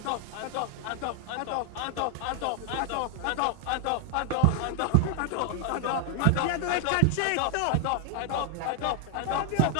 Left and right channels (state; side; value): different; both; correlation 0.00